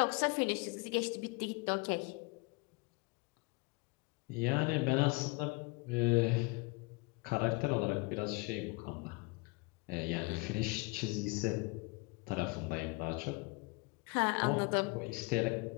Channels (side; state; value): right; quieter; 27.0 dB